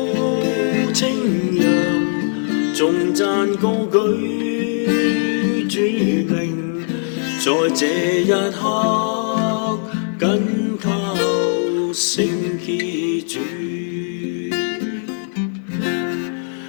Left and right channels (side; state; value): right; silent; 64 dB below the other